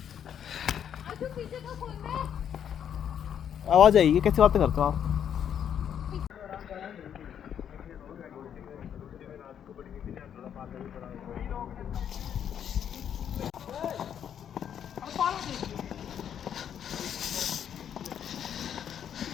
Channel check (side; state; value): right; quieter; 8.9 dB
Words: अच्छा पीछे का खोल दे। आवाज आएगी, कैसे बातें करते हो आप?